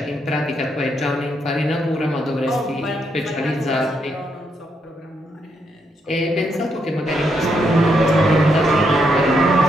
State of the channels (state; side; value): normal; both; correlation 0.78